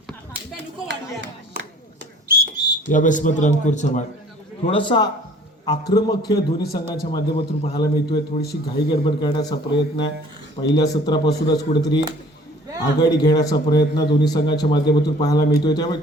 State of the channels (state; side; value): normal; both; correlation 0.52